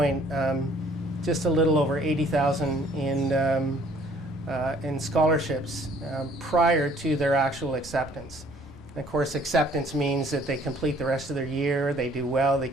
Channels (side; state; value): both; normal; correlation 0.58